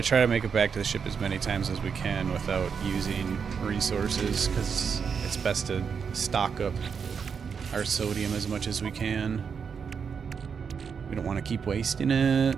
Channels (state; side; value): quieter; left; 6.3 dB